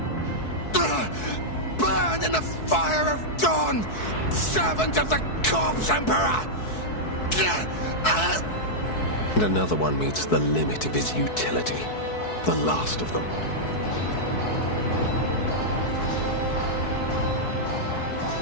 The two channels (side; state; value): right; late; 4.6 ms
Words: Burn in the fire of dawn! Servant of the Corpse Emperor! And another one meets the limit of his utility. The last of them.